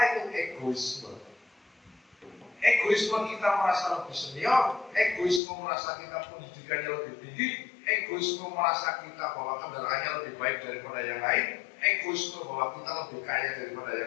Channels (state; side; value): drops out; right; at 5.4 s